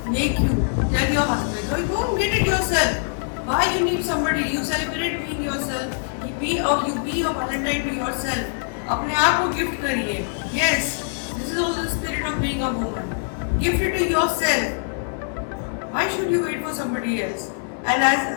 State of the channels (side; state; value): right; silent; 63 dB below the other